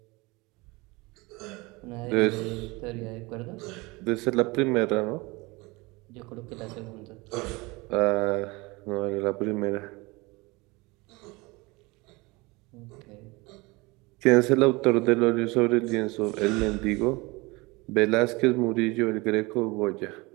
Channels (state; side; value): quieter; left; 24.2 dB